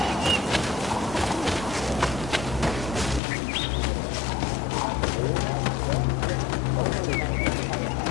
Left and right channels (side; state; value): right; drops out; at 3.2 s